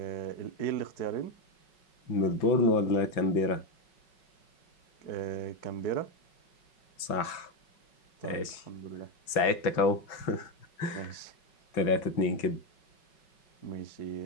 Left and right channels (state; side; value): late; right; 5.4 ms